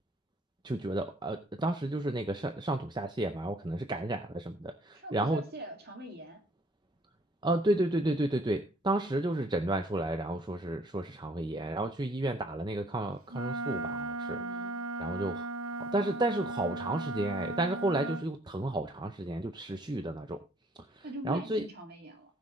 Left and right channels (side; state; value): both; normal; correlation 0.60